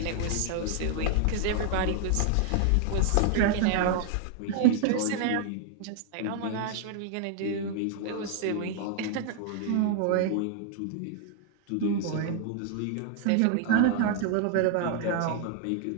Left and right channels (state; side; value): different; both; correlation 0.00